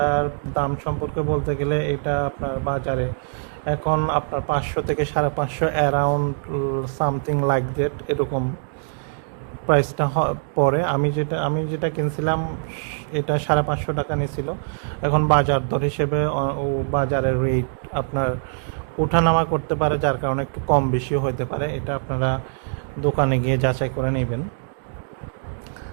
দাম সম্পর্কে বলতে গেলে এটা আপনার বাজারে এখন আপনার 500 থেকে 550 অ্যারাউন্ড সামথিং লাইক দ্যাট, এরকম প্রাইসটা পরে। আমি যেটা কিনছিলাম এটা 550 টাকা নিয়েছিল। এখন বাজার দর হিসেবে ও বাজারের রেট আপনার ওঠানামা করতে পারে, যার কারণে একটু কম বেশিও হতে পারে। এটা আপনারা দোকানে গিয়ে যাচাই করে নেবেন।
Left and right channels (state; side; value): silent; left; digital silence